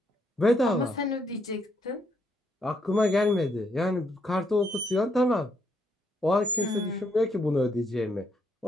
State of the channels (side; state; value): both; normal; correlation 0.74